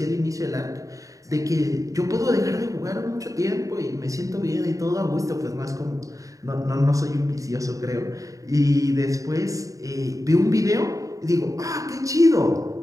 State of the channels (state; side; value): late; left; 0.16 ms